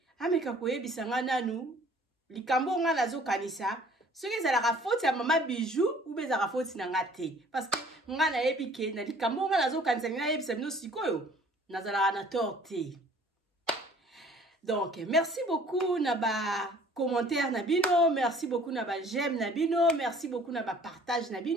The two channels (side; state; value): both; normal; correlation 0.54